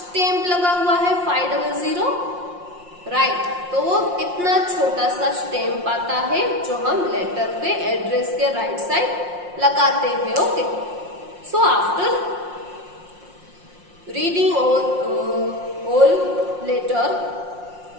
लगा हुआ है 500, राइट। तो वो इतना छोटा सा स्टैम्प आता है जो हम लेटर पे एड्रेस के राइट साइड लगाते हैं, okay. So after reading all letter,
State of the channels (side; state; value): left; late; 5.6 ms